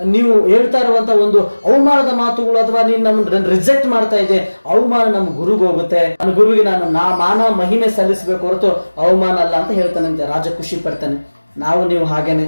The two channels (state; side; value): inverted; both; correlation -1.00